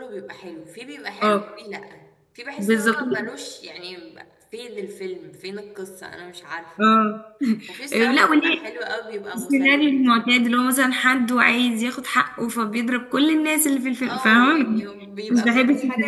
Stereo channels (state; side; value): identical; both; correlation 1.00